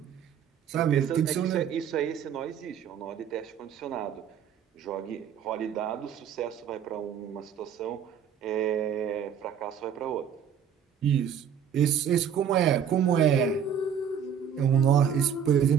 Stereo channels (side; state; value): left; quieter; 8.1 dB